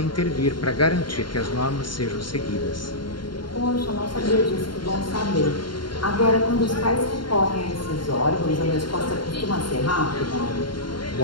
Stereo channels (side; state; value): right; late; 0.72 ms